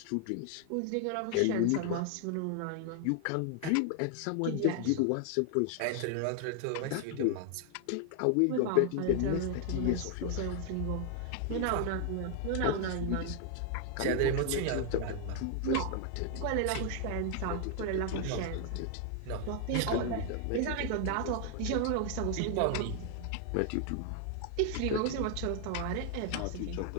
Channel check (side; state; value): both; different; correlation 0.00